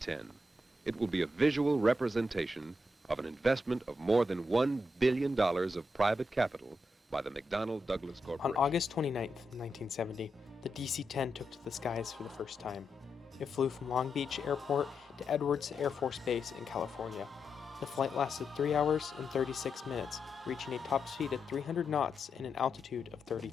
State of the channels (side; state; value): both; normal; correlation 0.85